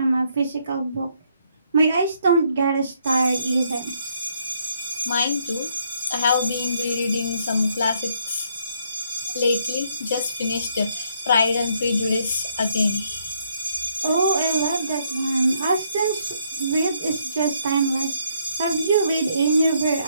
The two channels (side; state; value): both; inverted; correlation -0.71